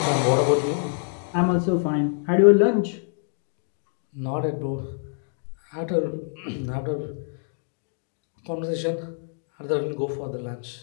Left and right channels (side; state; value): right; silent; digital silence